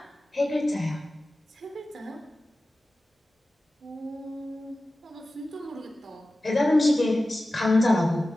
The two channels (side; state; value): both; normal; correlation 0.95